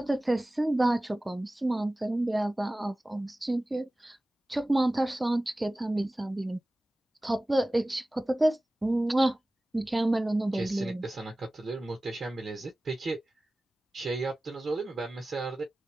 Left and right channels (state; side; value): normal; both; correlation 0.97